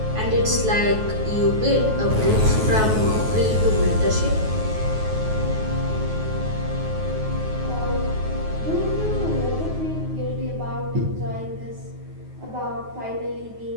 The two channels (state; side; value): late; left; 9.3 ms